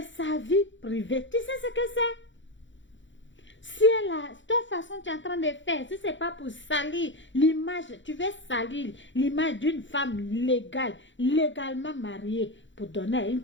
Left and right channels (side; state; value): right; late; 0.54 ms